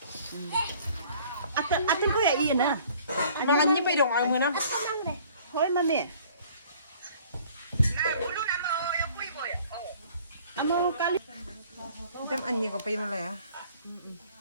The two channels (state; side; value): inverted; both; correlation -0.54